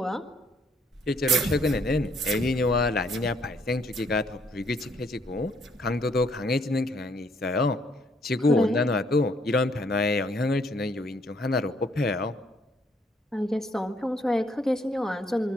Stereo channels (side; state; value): both; normal; correlation 0.68